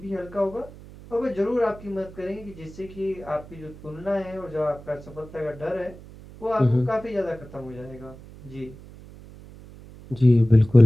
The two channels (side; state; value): right; noise; hum, 18 dB below the sound